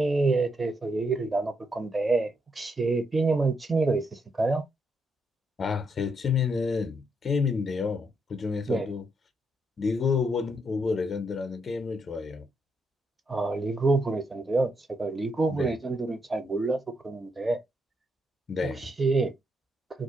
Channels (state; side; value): normal; both; correlation 0.78